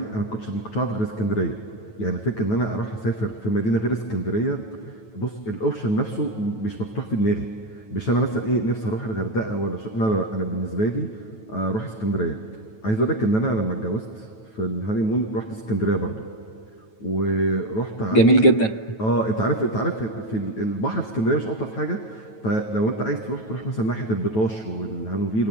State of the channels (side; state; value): right; late; 9.2 ms